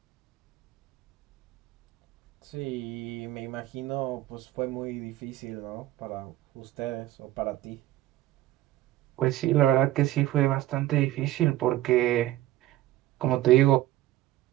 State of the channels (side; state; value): left; quieter; 15.2 dB